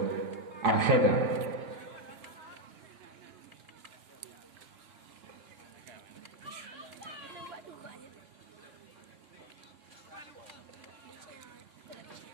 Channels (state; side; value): late; left; 2.8 ms